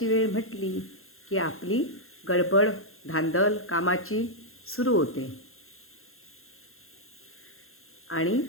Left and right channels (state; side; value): late; right; 0.61 ms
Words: वेळ म्हटली की आपली गडबड धांदल कामाची सुरू होते आणि